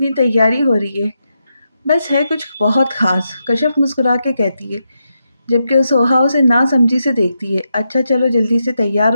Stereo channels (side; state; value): both; inverted; correlation -0.85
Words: तैयारी हो रही है। बस है कुछ बहुत ख़ास, कश्यप मुस्कुरा के कहती है, जबकि वो सोहा उसे नासमझी से देखती है। अच्छा चलो जल्दी से तैयार